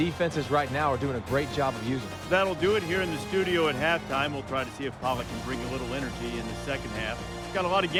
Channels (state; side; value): identical; both; correlation 1.00